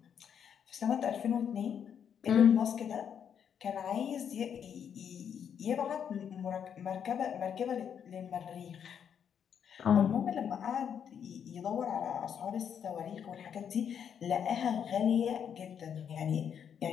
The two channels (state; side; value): quieter; right; 8.1 dB